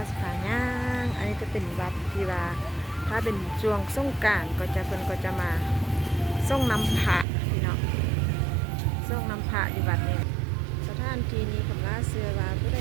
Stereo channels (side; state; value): left; drops out; at 7.2 s